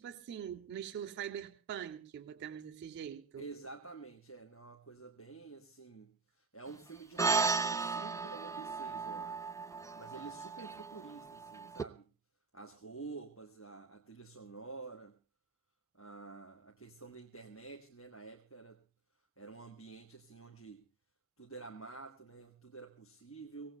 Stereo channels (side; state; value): left; quieter; 4.4 dB